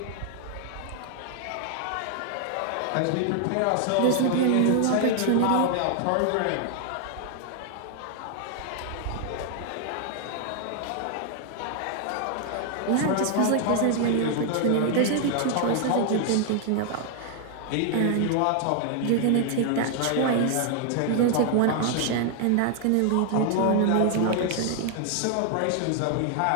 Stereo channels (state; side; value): different; both; correlation 0.00